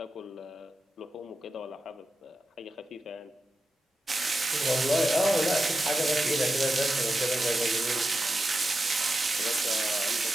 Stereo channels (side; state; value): both; normal; correlation 0.90